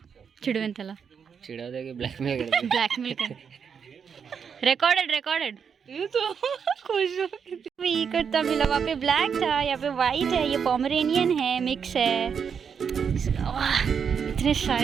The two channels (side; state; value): left; quieter; 6.8 dB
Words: चिडवेन त्याला, चिडवते की ब्लॅकमेल ब्लॅकमेल कर। रिकॉर्डेड ये तो खुश हो भी करता मिला, वहाँ पे ब्लैक था, यहाँ पे वाइट है, ये पोमरेनियन है, मिक्स है। वाह, इतने